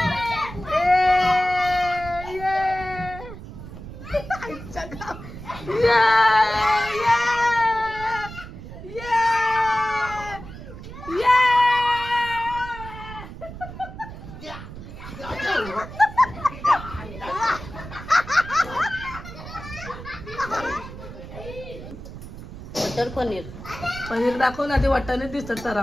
मटर पनीर पनीर दाखव ना. ते वाटाणे दिसतात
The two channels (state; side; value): noise; right; rumble, 12 dB below the sound